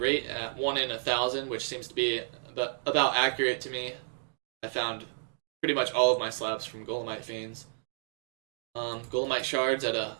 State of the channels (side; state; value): left; silent; digital silence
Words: at 1 in 1,000, which seems to be about accurate to me. I found pretty much all of my slabs from Golemite Fiends. Golemite shards at a